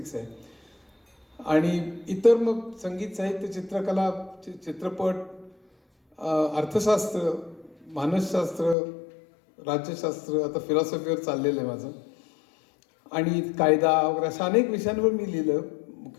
आहे. आणि इतर मग संगीत, साहित्य, चित्रकला, चित्रपट, अर्थशास्त्र, मानसशास्त्र, राज्यशास्त्र, आता फिलॉसॉफीवर चाललेलं आहे माझं. आणि कायदा वगैरे अशा अनेक विषयांवर मी लिहिलं.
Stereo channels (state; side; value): drops out; right; at 8.8 s